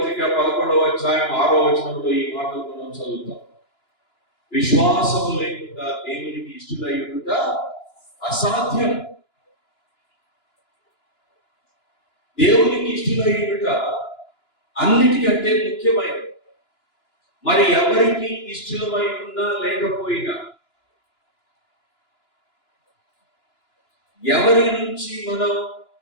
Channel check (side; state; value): right; late; 2.9 ms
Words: 11వ అధ్యాయం 6వ వచనంలో ఈ మాటలు మనం చదువుతాం. విశ్వాసము లేకుండా దేవునికి ఇష్టలై ఉండడం అసాధ్యం. దేవునికి ఇష్టలై ఉండడం అన్నిటికంటే ముఖ్యమైనది. మరి ఎవరికి ఇష్టమై ఉన్నా లేకపోయినా, ఎవరి నుంచి మనం